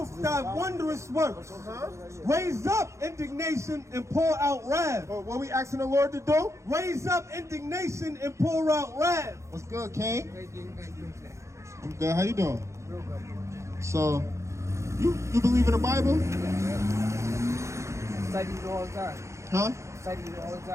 thy wondrous works. Raise up indignation and pour out wrath. What we asking the Lord to do? Raise up indignation and pour out wrath. What's good, King? I'm good. How you doing? So, you believe in the Bible? Study it all the time. Huh? Study it all the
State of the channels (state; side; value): late; left; 0.14 ms